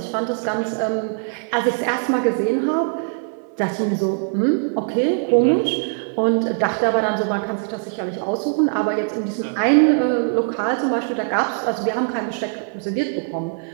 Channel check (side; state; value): left; silent; 60 dB below the other